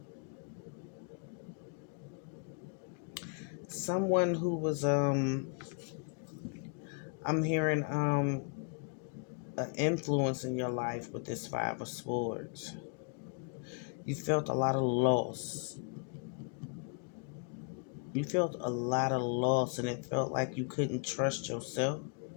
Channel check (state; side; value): quieter; right; 39.7 dB